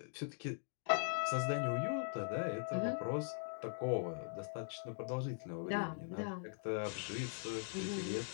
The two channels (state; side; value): silent; right; digital silence